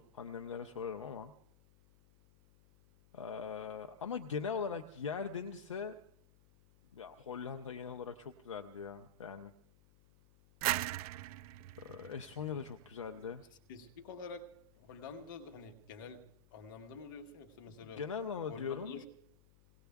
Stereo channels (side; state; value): left; noise; hum, 25 dB below the sound